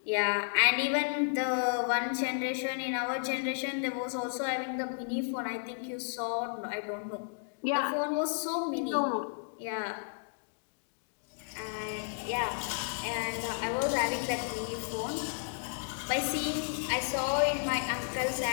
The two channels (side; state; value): right; silent; digital silence